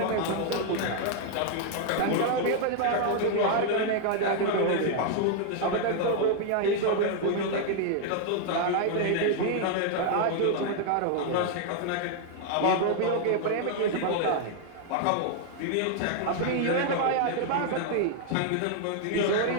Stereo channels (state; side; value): different; both; correlation 0.00